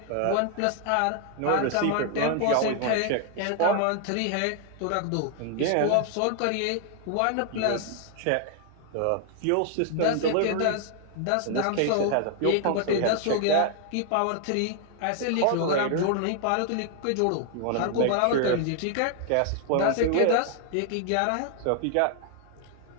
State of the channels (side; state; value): both; different; correlation 0.00